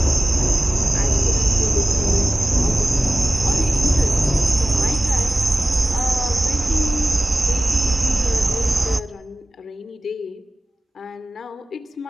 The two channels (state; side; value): normal; both; correlation 0.97